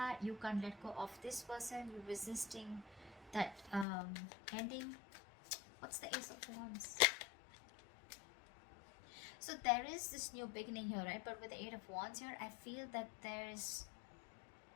You can't let go of this person. You're resisting that ending. What's the Ace of Wands? So there is this new beginning here, right? But with the 8 of Wands here, I feel that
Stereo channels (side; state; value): right; drops out; at 3.9 s